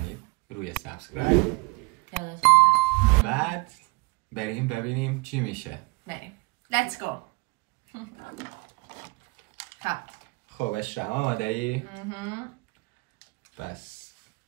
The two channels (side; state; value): left; quieter; 27.3 dB